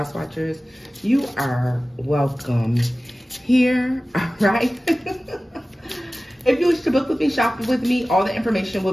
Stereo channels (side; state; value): both; normal; correlation 0.96